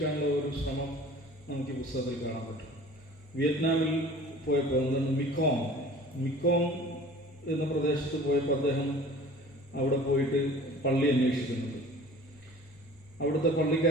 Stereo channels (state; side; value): normal; both; correlation 0.45